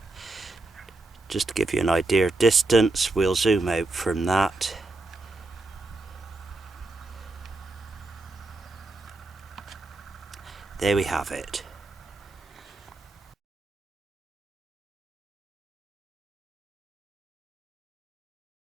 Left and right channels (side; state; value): left; quieter; 3.1 dB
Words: Just to give you an idea of distance, we'll zoom out from that. There we have it.